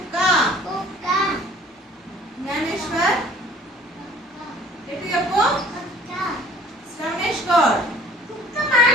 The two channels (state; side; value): normal; both; correlation 0.51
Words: కుక్క. జ్ఞానేశ్వర్ ఎటు చెప్పు. శ్రవణేష్ గౌడ్ కుక్క